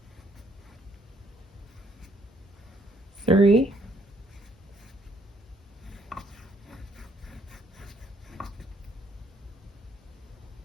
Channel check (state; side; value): normal; both; correlation 0.67